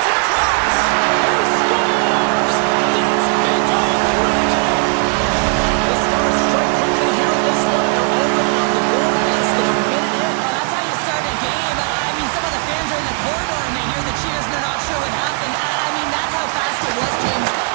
it across. He scores! That's big goal Reginald. The Stars strike quickly here in this one, and they're already on the board less than a minute in. Well, that's how you start a game. I mean, some of the fans are in the corridor and they hear the cheers and they're not sure what happened. I mean, that's how fast it was, James.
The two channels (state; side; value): quieter; left; 38.5 dB